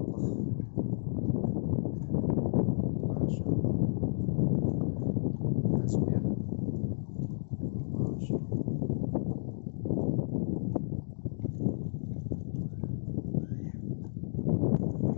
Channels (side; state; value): right; silent; digital silence